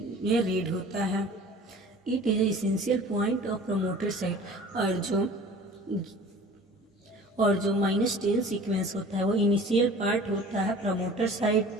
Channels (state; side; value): normal; both; correlation 0.44